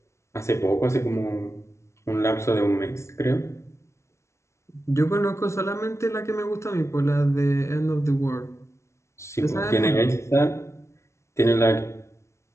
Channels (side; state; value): right; late; 0.13 ms